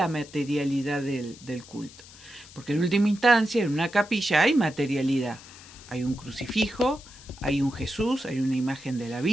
materialidad del culto. Porque en última instancia, en una capilla hay materialidad. Hay un crucifijo, hay un Jesús, hay una imagen de la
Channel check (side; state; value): left; noise; hiss, 20 dB below the sound